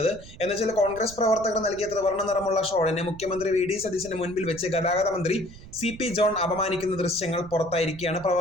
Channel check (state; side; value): noise; right; rumble, 17 dB below the sound